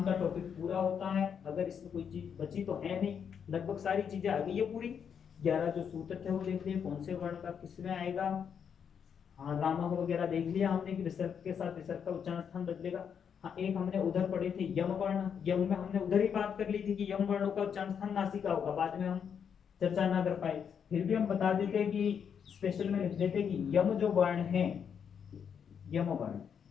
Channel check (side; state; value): right; quieter; 7.5 dB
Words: का टॉपिक पूरा होता है। अगर इसमें कोई चीज बची तो है नहीं, लगभग सारी चीजें आ गई है पूरी। 11 जो सूत्र थे वो देख लिए, कौन से वर्ण का किसमें आएगा। हाँ, रामा वगैरह देख लिया हमने कि विसर्ग के साथ विसर्ग का उच्चारण स्थान बदलेगा। हाँ, एक हमने उधर पढ़े थे यम वर्ण, यम में हमने उधर ही बात कर ली थी कि यम वर्णों का उच्चारण स्थान नासिका होगा, बाद में हम चर्चा ना कर पाए। फिर भी हम बता देते कि स्पेशल में लिख देते कि यम जो वर्ण है, यम वर्ण,